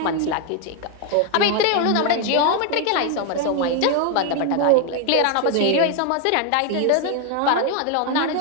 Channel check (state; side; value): different; both; correlation 0.01